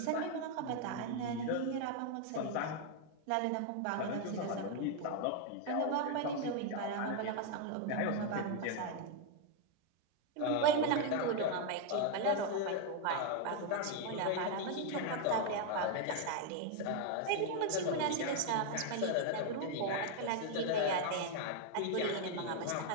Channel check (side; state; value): both; different; correlation 0.01